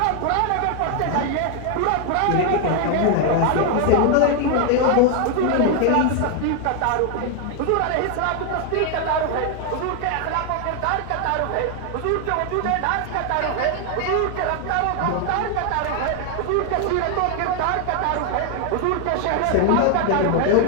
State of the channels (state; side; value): different; both; correlation 0.00